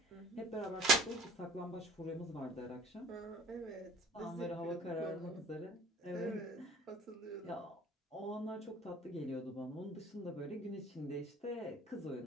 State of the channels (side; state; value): both; normal; correlation 0.50